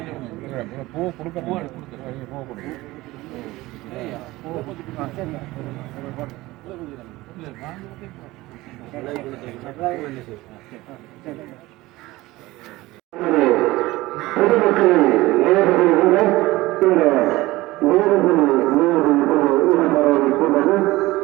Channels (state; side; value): quieter; left; 19.1 dB